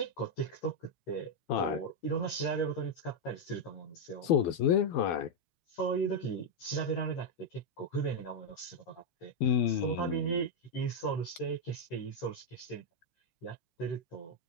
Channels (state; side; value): late; right; 12 ms